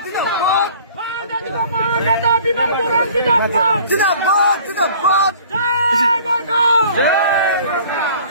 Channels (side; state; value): both; inverted; correlation -0.50